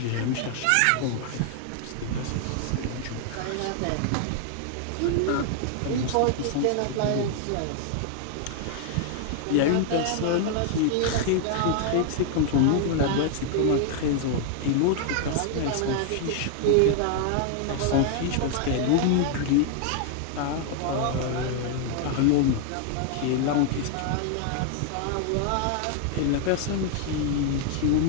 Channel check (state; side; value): different; both; correlation 0.00